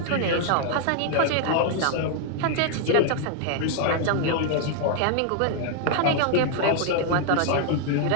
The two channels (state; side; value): different; both; correlation 0.00